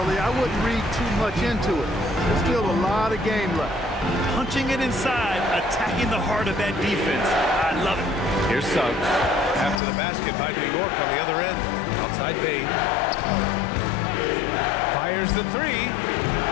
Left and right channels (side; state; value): right; drops out; at 9.8 s